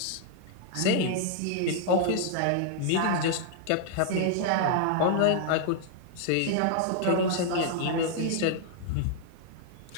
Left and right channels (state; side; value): different; both; correlation -0.01